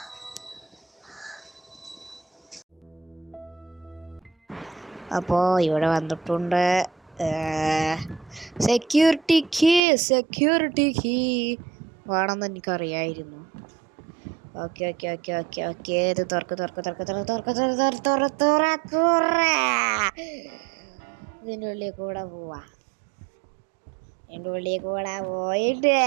അപ്പോൾ ഇവിടെ വന്നിട്ടുണ്ട്. സെക്യൂരിറ്റി കീ വേണമെന്ന് എനിക്കറിയായിരുന്നു. ഓക്കെ ഇത് ഇതിൻ്റെ ഉള്ളിൽ കൂടെ പോവാ. പോയിട്ട്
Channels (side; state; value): left; drops out; at 9.8 s